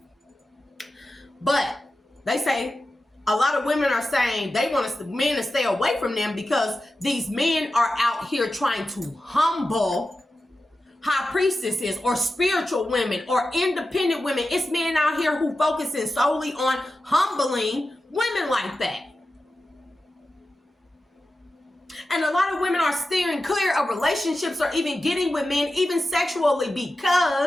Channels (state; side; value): normal; both; correlation 0.93